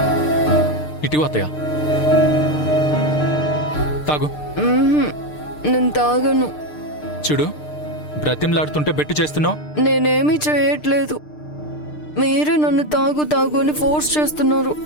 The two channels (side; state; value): right; late; 6.6 ms